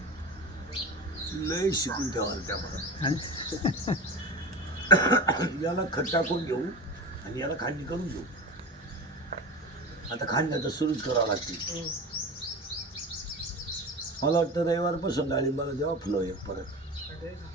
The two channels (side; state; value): both; normal; correlation 0.29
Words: लय शिकून ठेवाल त्या याला खत टाकून घेऊ आणि याला खांडणी करून घेऊ. आता खांडण्याचं सुरूच करावं लागते. मला वाटतं रविवारपासून डाळिंबाला जेव्हा फुलं एक परत